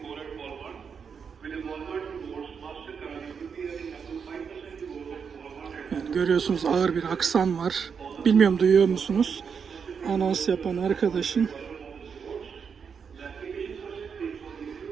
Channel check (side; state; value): left; quieter; 6.4 dB